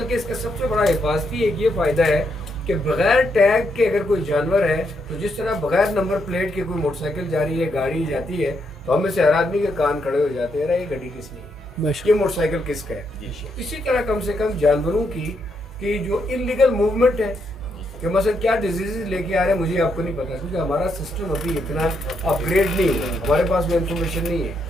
کے اس کا سب سے بڑا حفاظتی ایک یہ فائدہ ہے کہ بغیر ٹیگ کے اگر کوئی جانور ہے تو جس طرح بغیر نمبر پلیٹ کے کوئی موٹر سائیکل جا رہی ہے، گاڑی جاتی ہے، تو ہم میں سے ہر آدمی کے کان کھڑے ہو جاتے ہیں، یہ گاڑی کس کی ہے، یہ موٹر سائیکل کس کا ہے۔ اسی طرح کم سے کم جانوروں کی جو انلیگل موومنٹ ہے، کہ مثلا کیا ڈیزیزز لے کے آ رہے ہیں مجھے آپ کو نہیں پتا، کیونکہ ہمارا سسٹم ابھی اتنا اپ گریڈ نہیں ہے، ہمارے پاس وہ انفارمیشن نہیں ہے۔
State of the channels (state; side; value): normal; both; correlation 0.78